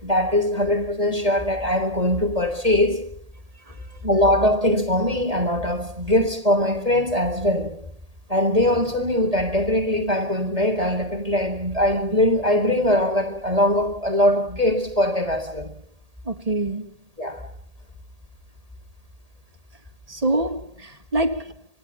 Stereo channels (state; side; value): late; left; 1.8 ms